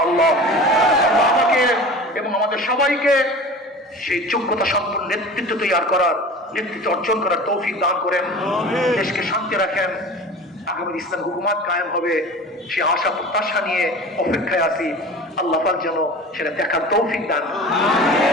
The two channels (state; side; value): normal; both; correlation 0.37